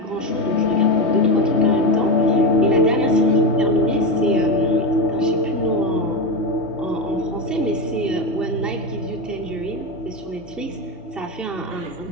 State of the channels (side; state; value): both; normal; correlation 0.15